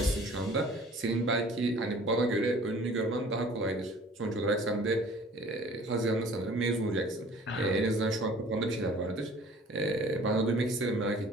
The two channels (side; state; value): both; normal; correlation 0.50